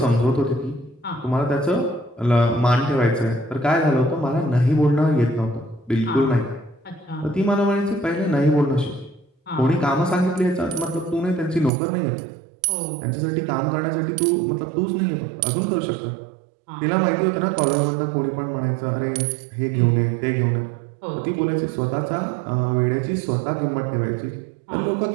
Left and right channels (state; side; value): drops out; left; at 11.7 s